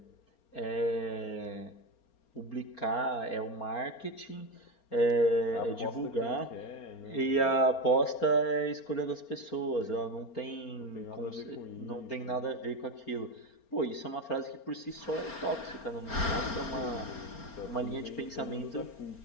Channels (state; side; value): late; right; 4.3 ms